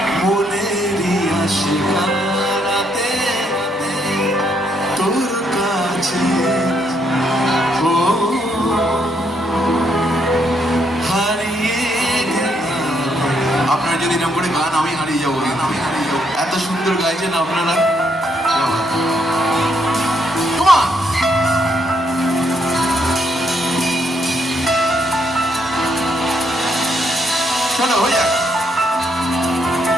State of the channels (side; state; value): both; normal; correlation 0.74